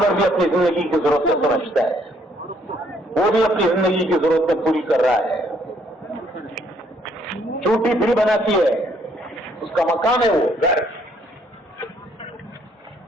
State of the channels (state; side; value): normal; both; correlation 0.67